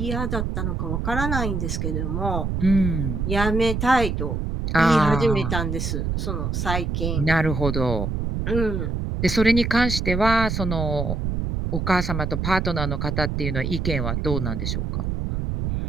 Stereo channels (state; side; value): noise; right; rumble, 1 dB below the sound